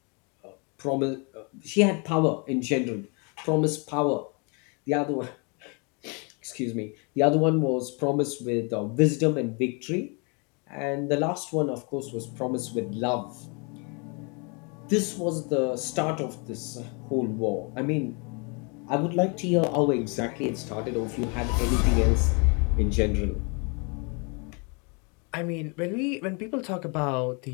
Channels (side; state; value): right; quieter; 33.8 dB